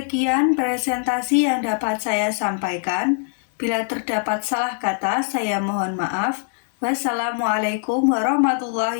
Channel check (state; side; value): silent; right; 58 dB below the other